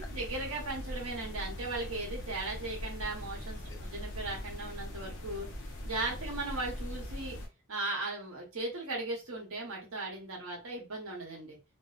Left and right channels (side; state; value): both; normal; correlation 0.15